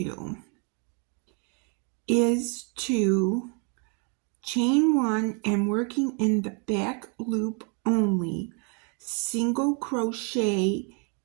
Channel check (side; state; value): left; quieter; 36.7 dB